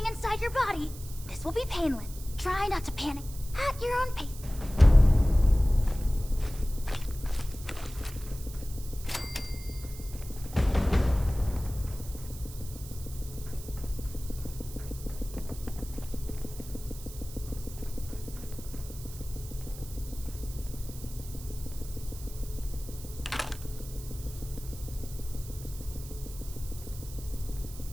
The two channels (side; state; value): right; noise; hiss, 15 dB below the sound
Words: inside your body. This will be painless. Try not to panic at your own pace.